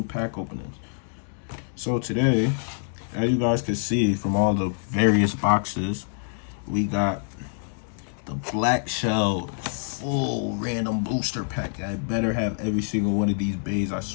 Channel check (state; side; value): silent; right; digital silence